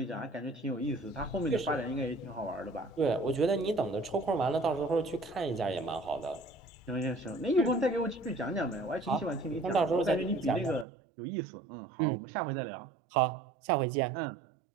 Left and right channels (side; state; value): left; drops out; at 10.9 s